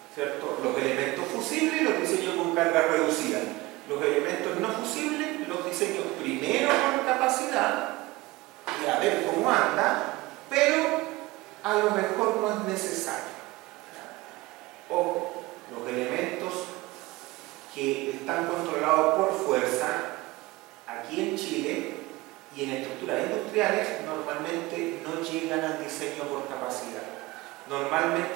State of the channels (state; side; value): quieter; left; 20.8 dB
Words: ¿Cierto? Los elementos fusibles los diseño con carga reducida. Los elementos no fusibles los diseño primero por capacidad y a ver cómo anda, pero a lo mejor no es necesario. O los elementos que están controlados por fuerza aquí en Chile y en estructuras industriales normalmente no llegan al diseño por capacidad.